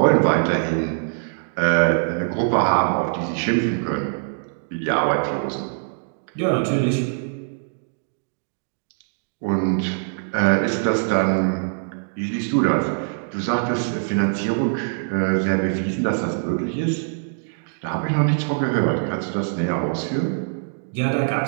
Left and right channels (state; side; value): silent; left; digital silence